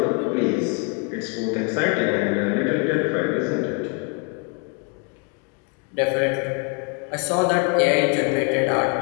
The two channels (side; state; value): right; quieter; 32.7 dB